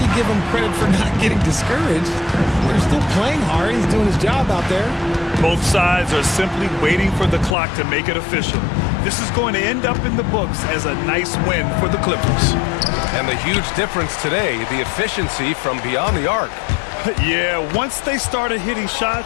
give him credit for not getting discouraged. They're still playing hard. He's doing his job out there. Both sides are simply waiting for the clock to make it official. This is going to end up in the books as a nice win for the Clippers. And the huge difference today, the efficiency from beyond the arc. Yeah, once they started hitting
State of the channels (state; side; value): drops out; right; at 7.6 s